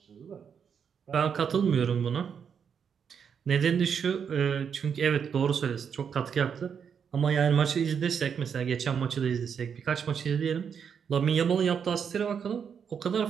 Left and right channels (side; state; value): left; quieter; 7.2 dB